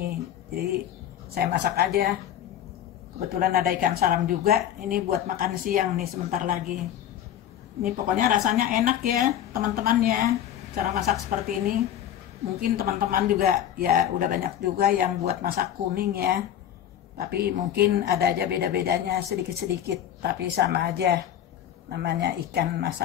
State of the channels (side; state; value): right; quieter; 10.6 dB